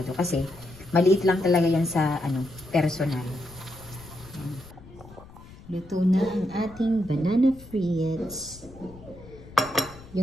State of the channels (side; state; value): left; noise; rumble, 19 dB below the sound